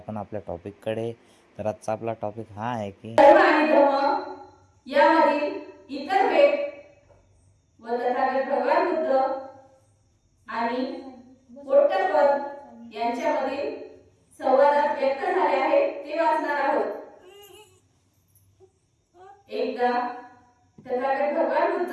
आपल्या टॉपिककडे. तर आजचा आपला टॉपिक हा आहे की धर्म आणि धर्म यामधील इतर भेद व तथागत भगवान बुद्ध आणि पोट्टपद यांच्यामधील संवादात व्यक्त झाले आहेत ते वाचणार आहोत. एकदा तथागत भगवान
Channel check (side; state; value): both; identical; correlation 1.00